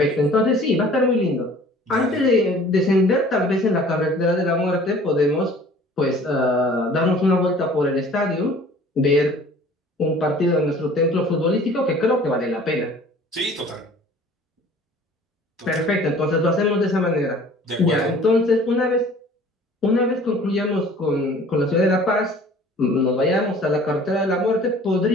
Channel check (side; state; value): both; normal; correlation 0.49